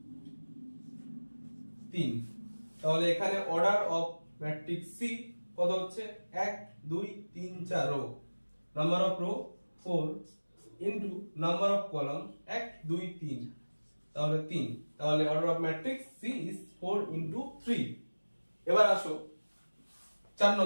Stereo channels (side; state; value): both; inverted; correlation -1.00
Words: 3। তাহলে এখানে অর্ডার অফ ম্যাট্রিক্স সি কত হচ্ছে 1 2 3 4 row, number of row 4 into number of column 1 2 3, তাহলে 3। তাহলে order of matrix C is 4 into 3। এবার আসো 4